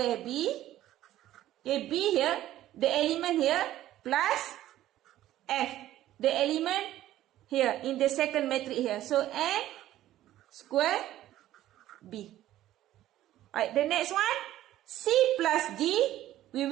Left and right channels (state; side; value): quieter; left; 13.7 dB